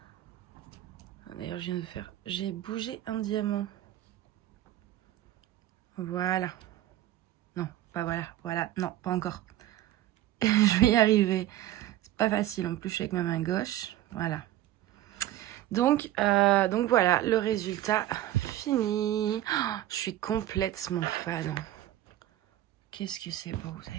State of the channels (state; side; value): quieter; left; 13.7 dB